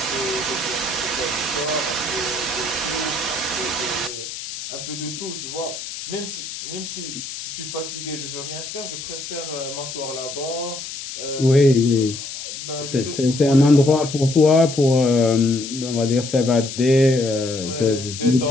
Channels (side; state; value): left; noise; hiss, 9 dB below the sound